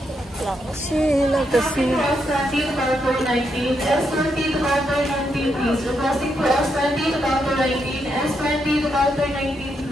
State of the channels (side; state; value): both; normal; correlation 0.80